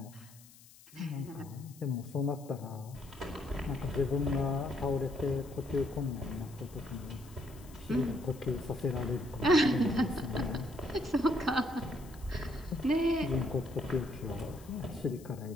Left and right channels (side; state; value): left; noise; hiss, 22 dB below the sound